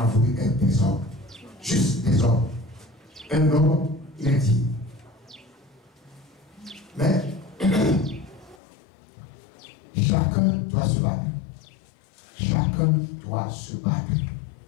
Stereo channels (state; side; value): drops out; right; at 8.6 s